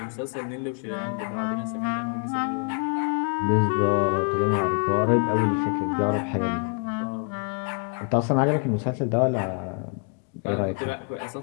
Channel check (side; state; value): right; quieter; 39.3 dB